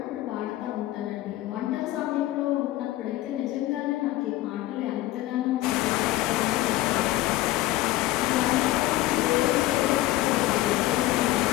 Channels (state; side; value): quieter; right; 16.4 dB